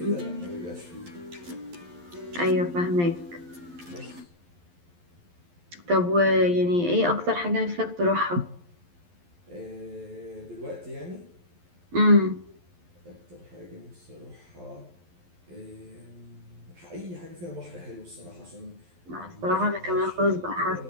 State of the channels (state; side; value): late; left; 11 ms